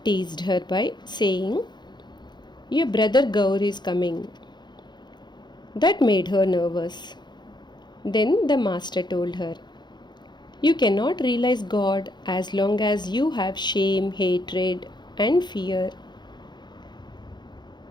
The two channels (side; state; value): right; late; 0.21 ms